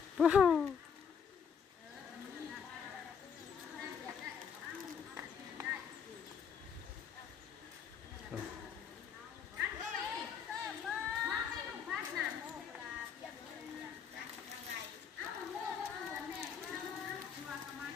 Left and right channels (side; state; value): right; quieter; 7.0 dB